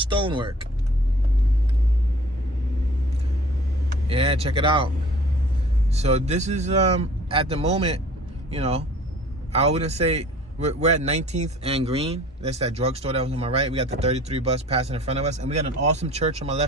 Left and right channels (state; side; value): normal; both; correlation 0.49